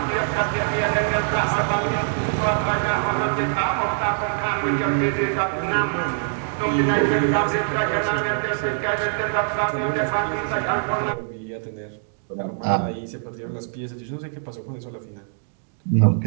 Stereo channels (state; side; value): silent; left; digital silence